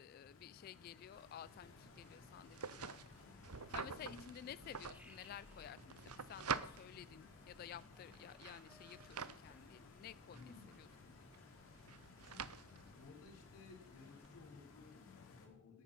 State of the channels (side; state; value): both; normal; correlation 0.08